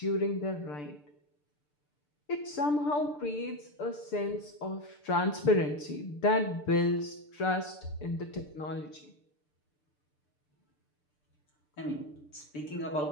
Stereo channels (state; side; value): late; right; 6.8 ms